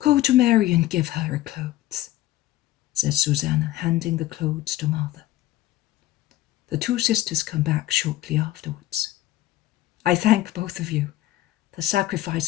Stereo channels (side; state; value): right; quieter; 15.0 dB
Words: to Mary and give her her clothes," says Susanna, handing the clothes to Martha. The two sisters come back shortly afterwards. "I thank both of you. The